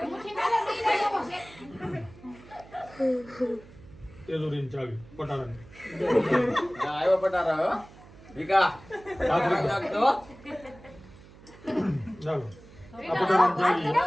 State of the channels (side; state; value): right; noise; hum, 21 dB below the sound